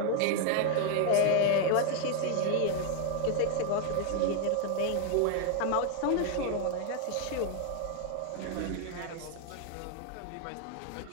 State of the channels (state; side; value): different; both; correlation 0.00